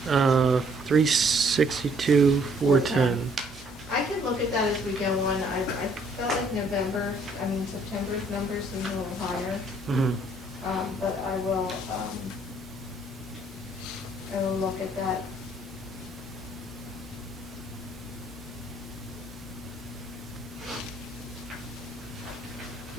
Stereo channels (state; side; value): normal; both; correlation 0.64